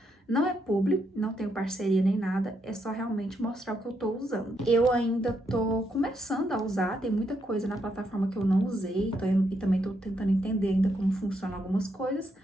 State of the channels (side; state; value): both; normal; correlation 0.78